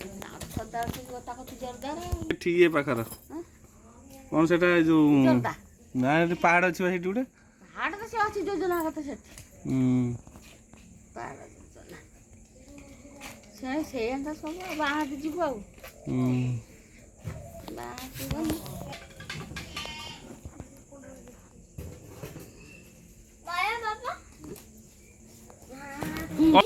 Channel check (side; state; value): both; identical; correlation 1.00